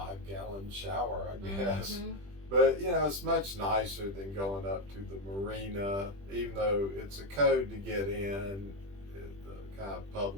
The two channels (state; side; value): late; left; 20 ms